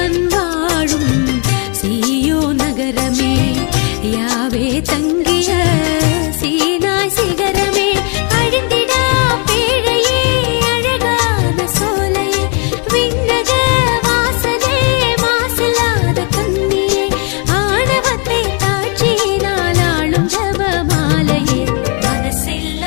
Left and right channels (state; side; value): quieter; right; 36.5 dB